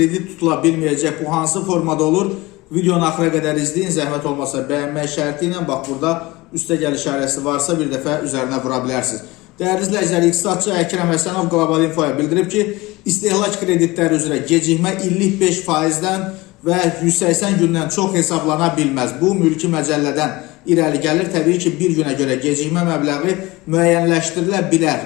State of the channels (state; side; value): quieter; right; 21.3 dB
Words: tutula bilməyəcək. Bu hansı formada olur? Videonu axıra qədər izləyin. Zəhmət olmasa bəyənmək şərti ilə bax burada üstə gəl işarəsi varsa bir dəfə üzərinə vura bilərsiniz. Değerli izləyicilər, iqtisadçı Əkrəm Həsənov Qlobal Infoya bildirib ki, istehlak kreditləri üzrə gecikmə illik 5%-dən və 180 gündən çox hesablana bilməz. Bu mülki məcəllədən irəli gəlir. Təbii ki, bir günə görə gecikmə məbləği müəyyənləşdirilə